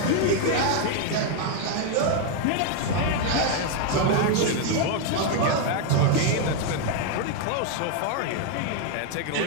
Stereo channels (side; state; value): both; different; correlation 0.01